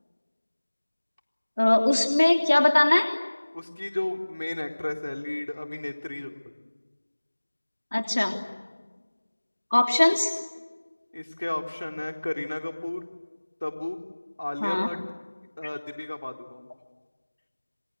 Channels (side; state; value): both; inverted; correlation -1.00